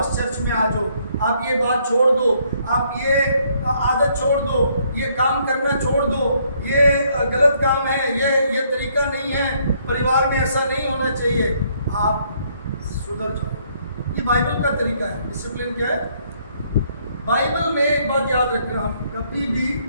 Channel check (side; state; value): both; inverted; correlation -0.68